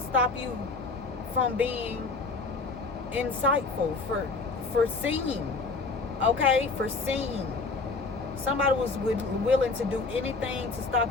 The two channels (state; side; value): quieter; right; 3.9 dB